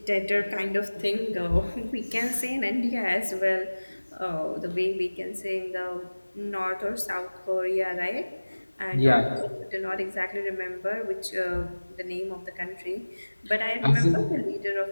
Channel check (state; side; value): inverted; both; correlation -1.00